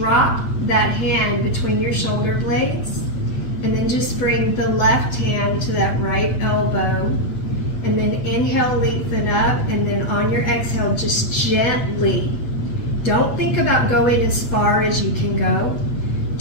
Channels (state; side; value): late; right; 8.4 ms